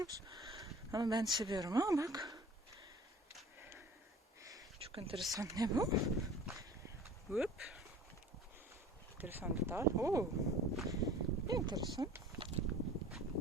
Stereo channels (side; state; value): both; normal; correlation 0.45